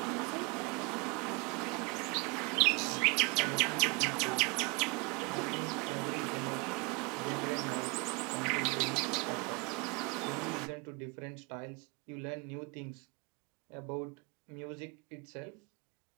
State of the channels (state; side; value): quieter; left; 28.7 dB